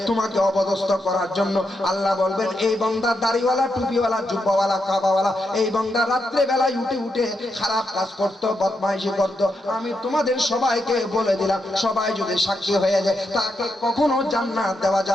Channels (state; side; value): normal; both; correlation 0.83